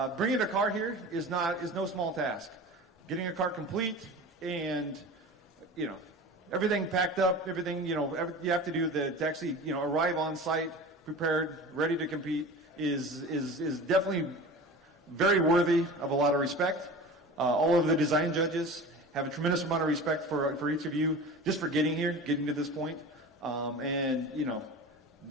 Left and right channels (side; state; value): both; normal; correlation 0.35